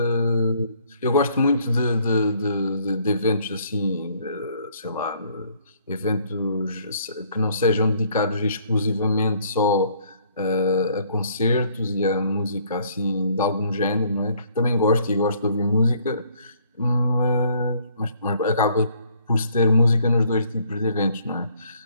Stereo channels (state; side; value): inverted; both; correlation -0.63